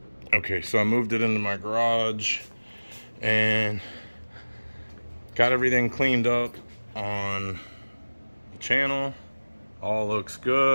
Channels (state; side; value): inverted; both; correlation -1.00